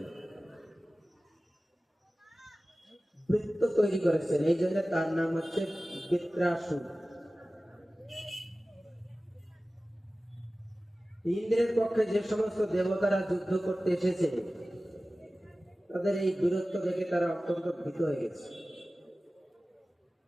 বৃত্ত তৈরি করেছেন। এই জন্য তার নাম হচ্ছে বৃত্রাসুর। ইন্দ্রের পক্ষে যে সমস্ত দেবতারা যুদ্ধ করতে এসেছে, তাদের এই বীরত্ব দেখে তারা অত্যন্ত ভীত হয়ে গেছে।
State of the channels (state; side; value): normal; both; correlation 0.96